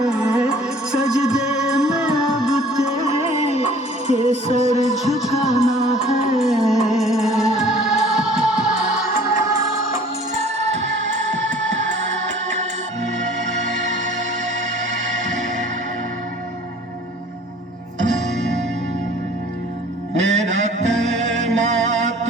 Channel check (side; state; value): both; normal; correlation 0.51